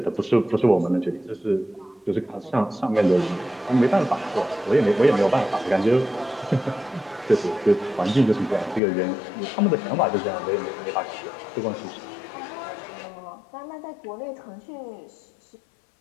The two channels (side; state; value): right; drops out; at 8.8 s